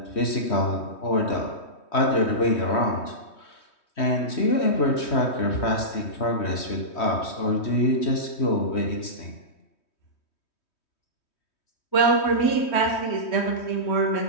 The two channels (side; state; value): right; late; 3.2 ms